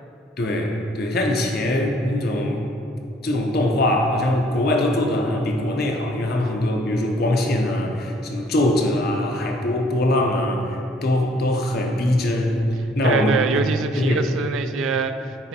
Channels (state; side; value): normal; both; correlation 0.61